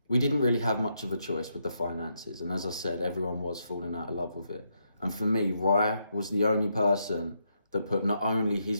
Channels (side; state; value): both; inverted; correlation -0.79